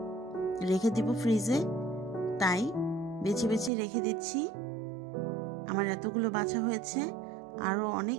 রেখে দিব ফ্রিজে। তাই বেছে বেছে রেখে দিচ্ছি। আমার এতগুলো বাছা হয়েছে, আরও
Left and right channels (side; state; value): left; drops out; at 3.7 s